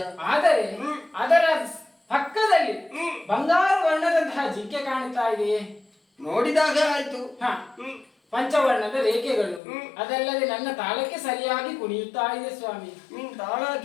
ಆದರೆ ಅದರ ಪಕ್ಕದಲ್ಲಿ ಬಂಗಾರ ವರ್ಣದಂತಹ ಜಿಂಕೆ ಕಾಣುತ್ತಾ ಇದೆ. ನೋಡಿದಾಗ ಆಯ್ತು. ಪಂಚವರ್ಣದ ರೇಖೆಗಳು, ಅದಲ್ಲದೆ ನನ್ನ ತಾಳಕ್ಕೆ ಸರಿಯಾಗಿ ಕುಣಿಯುತ್ತಾ ಇದೆ ಸ್ವಾಮಿ. ನೀನ್ ತಾಳ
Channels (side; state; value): right; drops out; at 9.6 s